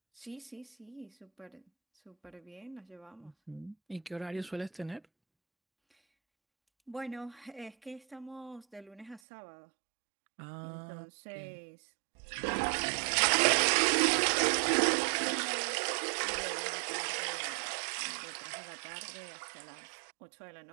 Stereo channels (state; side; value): drops out; left; at 9.2 s